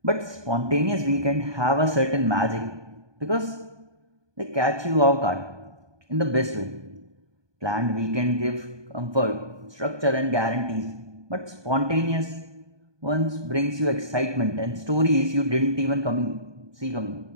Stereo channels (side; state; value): left; late; 1.2 ms